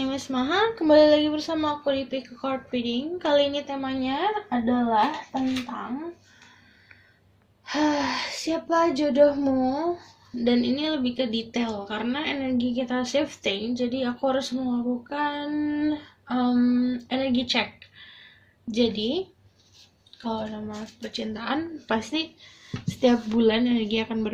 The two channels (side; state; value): both; identical; correlation 1.00